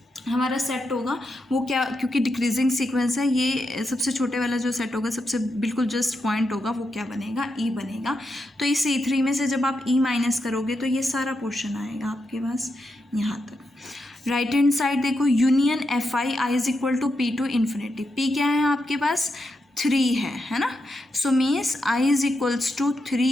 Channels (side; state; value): both; normal; correlation 0.85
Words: हमारा सेट होगा वो क्या, क्योंकि डिक्रीजिंग सीक्वेंस है, ये सबसे छोटे वाला जो सेट होगा, सबसे बिल्कुल जस्ट पॉइंट होगा, वो क्या बनेगा, E बनेगा. तो इस E3 में से जब आप E माइनस करोगे तो ये सारा पोर्शन आएगा आपके पास यहाँ तक. राइट हैंड साइड देखो, union Fi I is equal to P to infinity. P क्या है आपके पास, 3 है ना. So means I is equals to